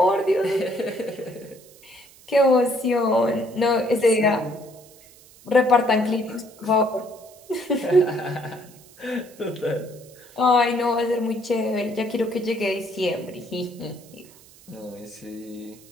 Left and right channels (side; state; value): right; noise; hiss, 24 dB below the sound